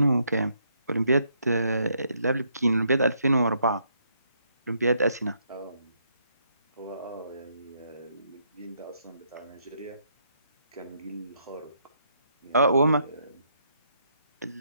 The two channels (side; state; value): both; inverted; correlation -0.74